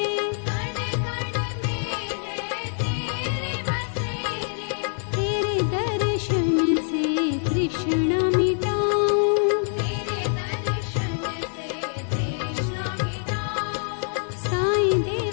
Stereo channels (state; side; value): silent; right; 61 dB below the other